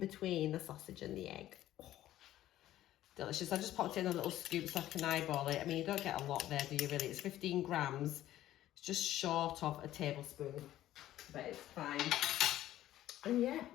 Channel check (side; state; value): right; quieter; 13.6 dB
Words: the sausage and the egg. Oh, delicious. I just popped in a little scoop so I can eyeball it. I mean, you don't get a lot there, do you really? It's 15 grams. It's just short of a tablespoon, but it's fine. And yeah,